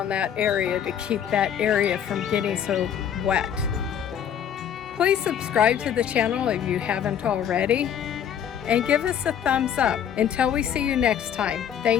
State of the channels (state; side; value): quieter; right; 9.0 dB